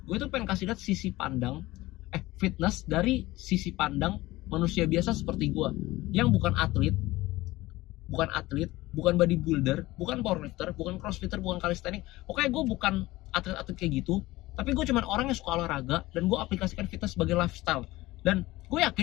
gue itu pengen kasih lihat sisi pandang fitness dari sisi pandang manusia biasa seperti gue, yang bukan atlet, bukan bodybuilder, bukan powerlifter, bukan crossfitter, bukan calisthenics. Pokoknya gue bukan atlet-atlet kayak gitu, tapi gue cuman orang yang suka olahraga, dan gue aplikasikan fitness sebagai lifestyle. Dan gue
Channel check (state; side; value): quieter; right; 18.6 dB